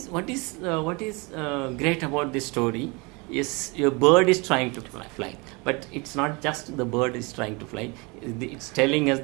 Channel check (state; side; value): quieter; left; 28.2 dB